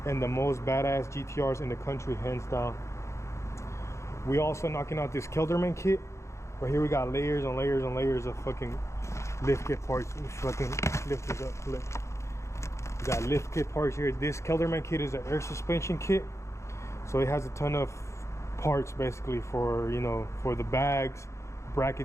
and the most badass GTRs in the country, hands down. We also knocking out this Kelderman kit. But here we got layers on layers on layers of fucking lift kit parts. Let me fucking lift this up. Look. We got lift kit parts here. This Kelderman kit is an air suspension kit. So it has a ton of parts basically for, you know, for the bags,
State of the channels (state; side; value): late; right; 0.14 ms